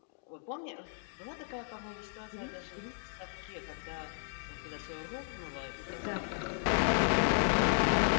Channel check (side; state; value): right; silent; digital silence